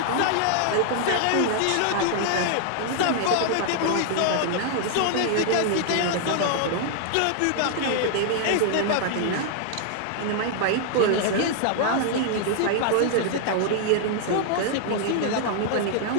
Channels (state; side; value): different; both; correlation -0.01